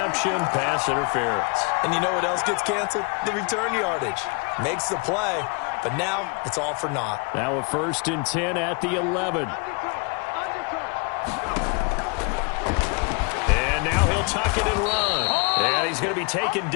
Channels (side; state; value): right; quieter; 31.4 dB